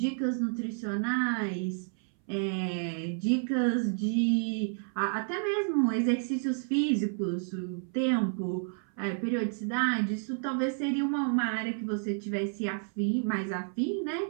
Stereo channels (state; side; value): silent; left; 58 dB below the other